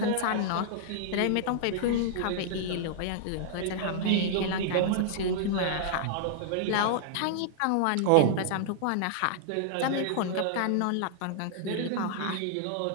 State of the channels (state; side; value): different; both; correlation -0.01